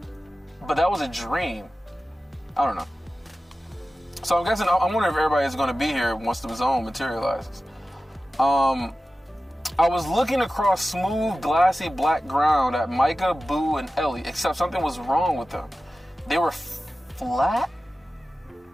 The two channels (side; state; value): both; normal; correlation 0.95